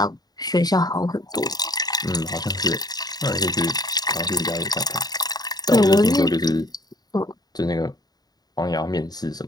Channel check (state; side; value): late; right; 0.19 ms